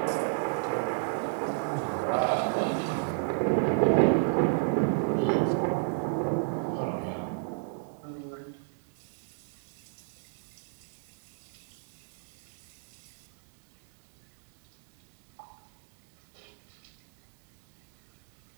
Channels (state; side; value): silent; left; digital silence